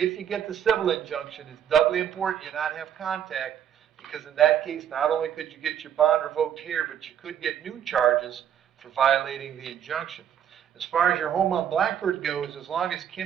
you get the civil injunction, it's doubly important you not have contact, because in that case, not only could you get your bond revoked here, but you could get new charges for violating the injunction. As far as your home on Blackbird goes, as long as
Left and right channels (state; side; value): quieter; left; 9.4 dB